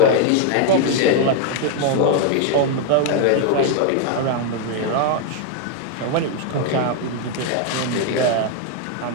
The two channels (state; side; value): different; both; correlation 0.00